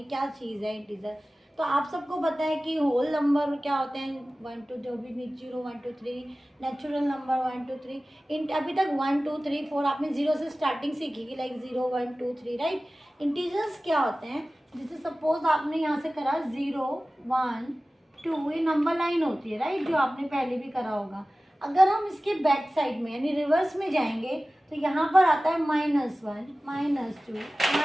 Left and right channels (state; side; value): normal; both; correlation 0.97